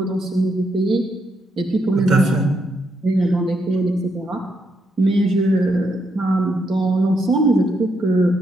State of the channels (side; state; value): both; normal; correlation 0.78